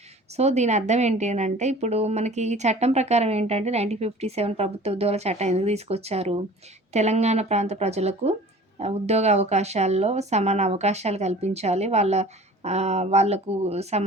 సో, దీని అర్థం ఏంటి అనంటే, ఇప్పుడు మనకి ఈ చట్టం ప్రకారం ఏంటంటే 1957 ప్రభుత్వ ఉద్యోగాల చట్టం ఎందుకు తీసుకొచ్చారు? తెలంగాణ ప్రాంత ప్రజలకు ఉద్యోగ అవకాశాల్లో సమాన అవకాశాలు కల్పించాలి. వాళ్ళకు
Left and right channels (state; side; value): normal; both; correlation 0.45